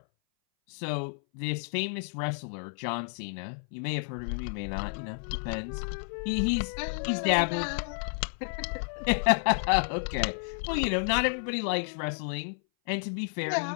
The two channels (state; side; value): silent; right; 57 dB below the other